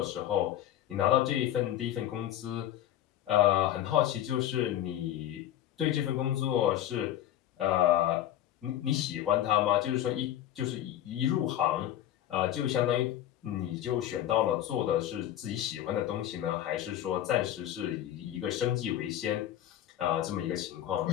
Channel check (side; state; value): right; quieter; 12.0 dB